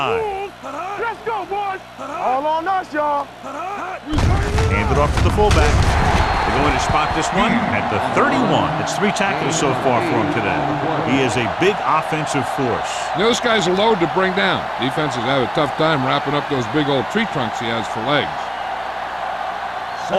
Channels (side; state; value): both; identical; correlation 1.00